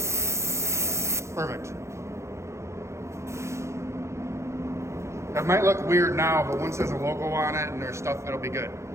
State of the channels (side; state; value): left; late; 0.14 ms